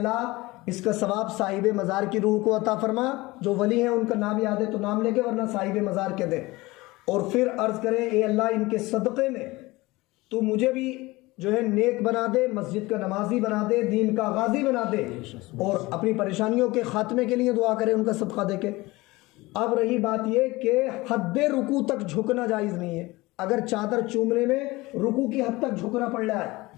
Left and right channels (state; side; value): quieter; right; 21.1 dB